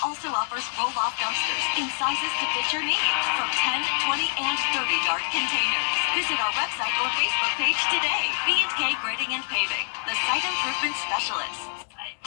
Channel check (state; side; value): silent; right; digital silence